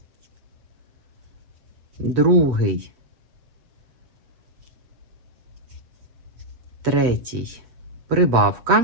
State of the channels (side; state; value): left; late; 7.5 ms